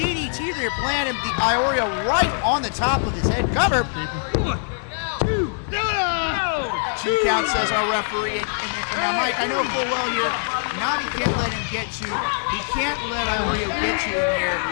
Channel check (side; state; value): right; silent; digital silence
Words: there, planted the Iorio right on the top of his head. Cover. 2 count, says our referee. And now, Mike, I know full well here, Navi can't let him get to, he can't let Iorio get to him here